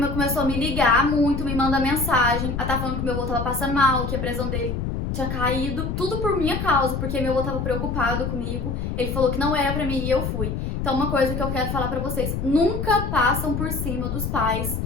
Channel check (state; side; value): noise; left; rumble, 3 dB below the sound